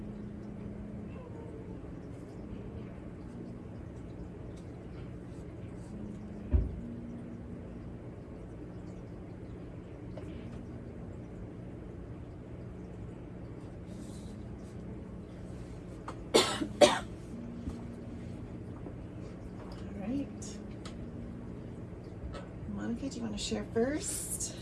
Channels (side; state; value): both; identical; correlation 1.00